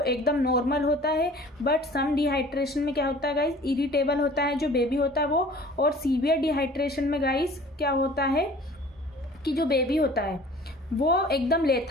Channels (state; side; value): normal; both; correlation 0.47